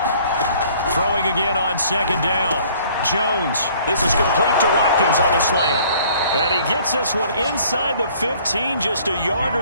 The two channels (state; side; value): inverted; both; correlation -0.56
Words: Throwing again on 2nd down. Jones, this is complete to Watkins on the slant. And he gets this one inside the 15, just a yard